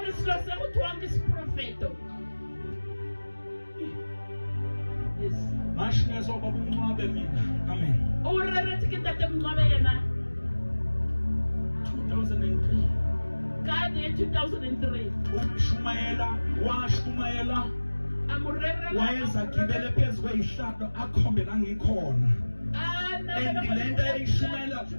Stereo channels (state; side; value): inverted; both; correlation -1.00